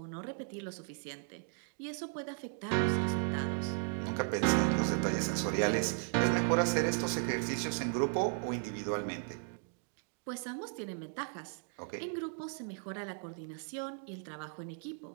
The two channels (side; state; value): left; silent; 54 dB below the other